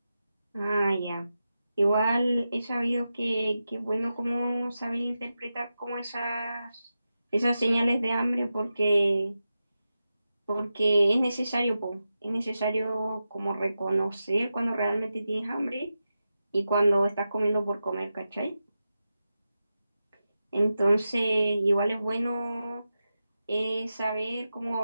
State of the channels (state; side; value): inverted; both; correlation -0.91